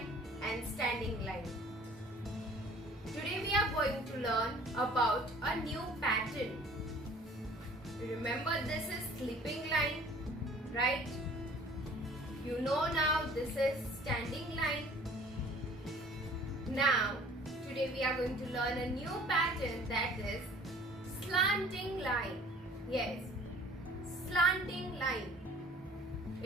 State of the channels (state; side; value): normal; both; correlation 0.51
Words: and standing line. Today we are going to learn about a new pattern. Remember, this is sleeping line, right? You know now this is standing line. Now, today we are going to learn a new pattern, that is slanting line. Yes, slanting line.